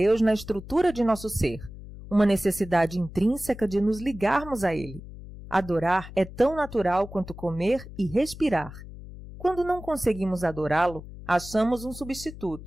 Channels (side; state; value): left; noise; hum, 14 dB below the sound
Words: na estrutura de nosso ser, uma necessidade intrínseca de nos ligarmos a Ele. Adorar é tão natural quanto comer e respirar. Quando não conseguimos adorá-lo, achamos um